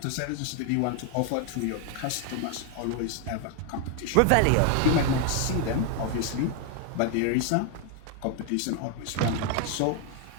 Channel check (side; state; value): both; different; correlation 0.00